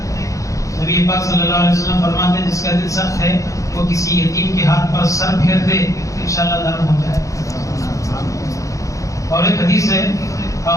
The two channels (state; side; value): late; right; 0.16 ms